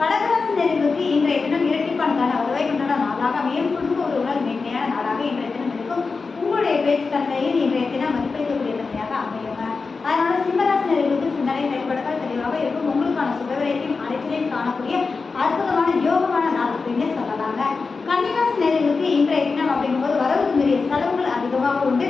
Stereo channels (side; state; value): right; quieter; 4.4 dB